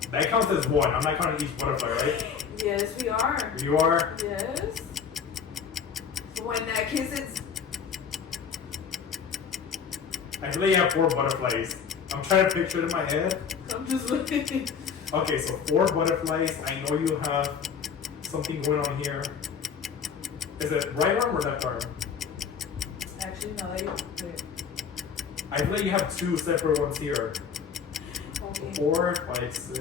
That counts as one. I'm not counting each butterfly, right? Yes, we are. You are? Yes. So in that case, it's. I feel like you have 4 butterflies. I'm trying to picture it in my head. I'm just looking. Okay, so 4 butterflies. I know you have something going on here. Is it right arm or left arm? Actually, no. Wait. I feel like you have 2 separate ones here. Okay. 4, 5,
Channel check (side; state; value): right; quieter; 6.8 dB